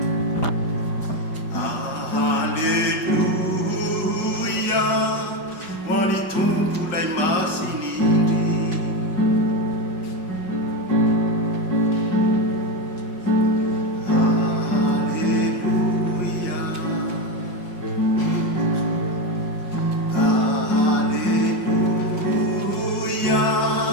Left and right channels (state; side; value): late; right; 5.5 ms